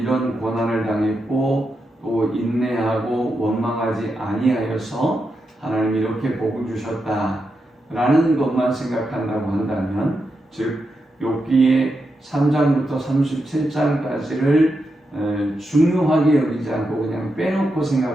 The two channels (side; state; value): both; normal; correlation 0.86